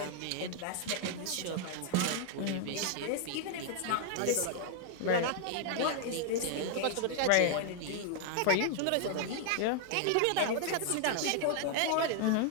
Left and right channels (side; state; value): both; different; correlation 0.00